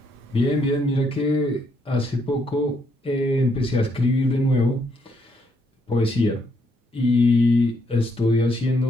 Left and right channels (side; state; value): both; normal; correlation 0.73